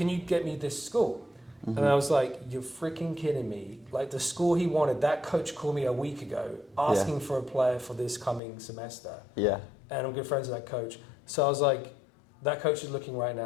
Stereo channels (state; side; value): drops out; right; at 8.4 s